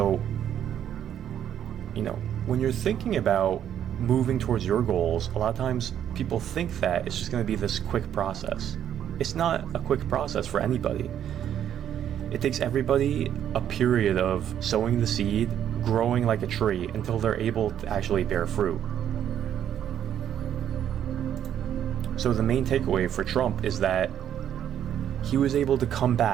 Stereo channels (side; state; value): left; quieter; 10.0 dB